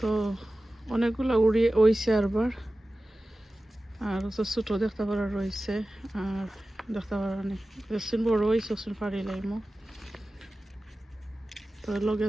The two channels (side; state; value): both; normal; correlation 0.95